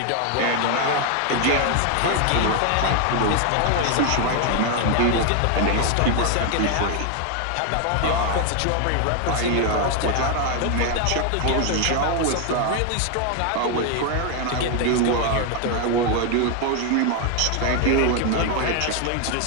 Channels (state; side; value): different; both; correlation 0.01